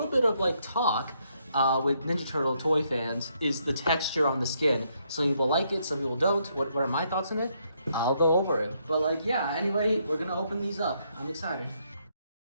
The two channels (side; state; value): both; inverted; correlation -0.74